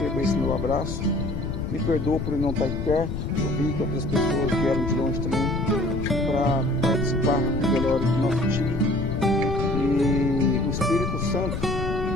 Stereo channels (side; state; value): left; noise; rumble, 4 dB below the sound